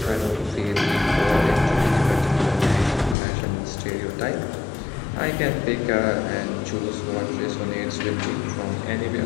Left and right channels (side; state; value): right; drops out; at 3.2 s